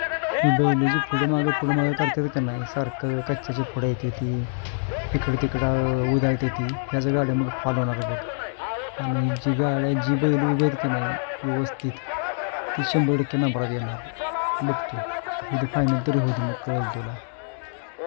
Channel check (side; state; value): right; silent; digital silence